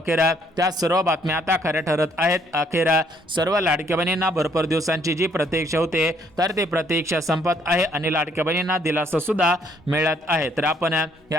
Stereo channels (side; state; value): both; normal; correlation 0.67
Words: त्या सर्व बातम्या आता खऱ्या ठरत आहेत। अखेर सर्व लाडक्या बहिणींना भरपूर दिवसांची जी प्रतीक्षा होते तर ती प्रतीक्षा संपत आहे आणि लाडक्या बहिणींना दिलासा सुद्धा मिळत आहे। तर आपण